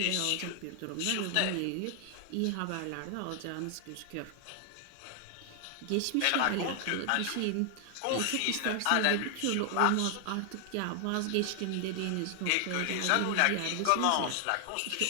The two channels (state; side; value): different; both; correlation 0.00